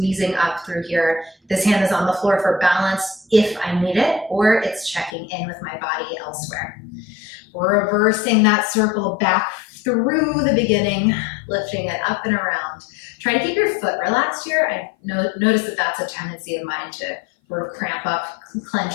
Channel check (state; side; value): drops out; right; at 5.1 s